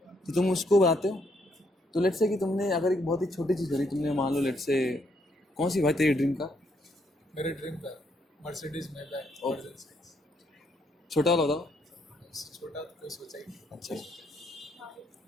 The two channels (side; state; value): both; normal; correlation 0.73